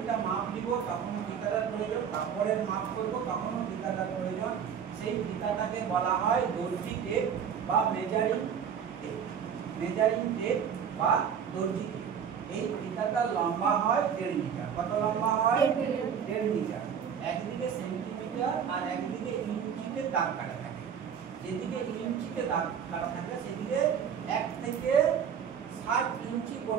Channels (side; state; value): left; quieter; 7.7 dB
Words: মাপ নিব তখনও ফিতাটার প্রয়োজন, কাপড়ের মাপ করব তখনও ফিতাটার প্রয়োজন। সেই ফিতাটাকে বলা হয় দর্জি টেপ বা মেজারিং টেপ। মেজারিং টেপ বা দর্জি টেপ। এই ফিতাটার লম্বা হয় 1.5 মিটার। কত লম্বা হয়? 1.5 মিটার। একদিকে সেন্টিমিটার আর একদিকে ইঞ্চিতে দাগ কাটা থাকে। যেদিকে ইঞ্চিতে দাগ কাটা থাকে সেদিকে 1 থেকে 7 ইঞ্চি